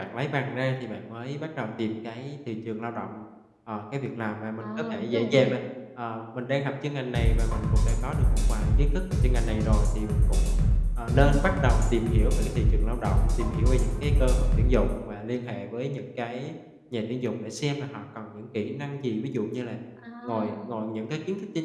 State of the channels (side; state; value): both; identical; correlation 1.00